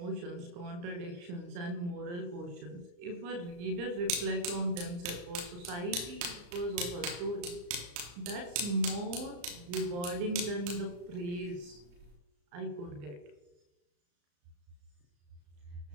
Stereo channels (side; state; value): left; late; 34 ms